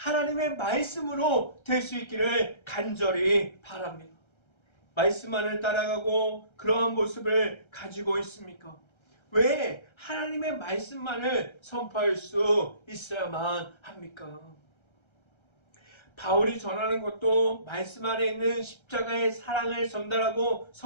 말씀으로 될 수 있기를 간절히 바랍니다. 말씀만을 따라가고 그러한 모습을 가지고 있습니까? 왜 하나님의 말씀만을 선포할 수 있어야만 합니까? 바울이 전하는 것도 말씀 안에 있는 십자가의 사랑을 전달하고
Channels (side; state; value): right; late; 1.3 ms